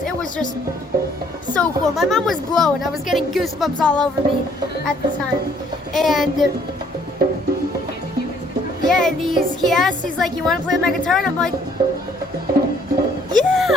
It was just so cool. My mom was blown. I was getting goosebumps all over me at the time. And and he asked, he's like, you want to play my guitar? And I'm like, yeah,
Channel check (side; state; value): both; normal; correlation 0.63